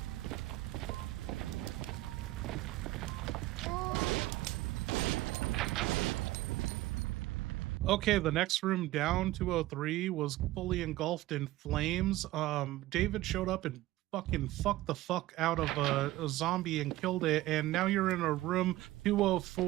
Okay, the next room down, 203, was fully engulfed in flames. David showed up and fucking fucked the fuck out of a zombie and killed it, and now you're in a room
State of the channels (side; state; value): left; quieter; 16.9 dB